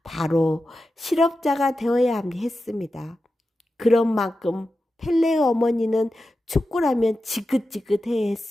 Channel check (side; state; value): both; normal; correlation 0.92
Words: 바로 실업자가 되어야 했습니다. 그런 만큼 펠레의 어머니는 축구라면 지긋지긋해